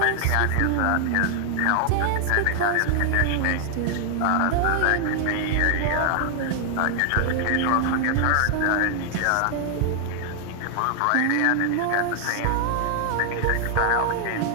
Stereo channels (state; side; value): different; both; correlation 0.00